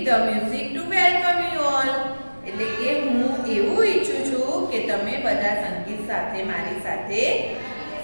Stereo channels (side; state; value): both; inverted; correlation -1.00